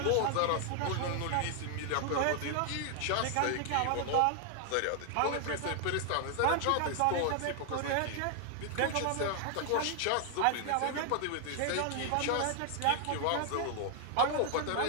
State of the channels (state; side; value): different; both; correlation 0.00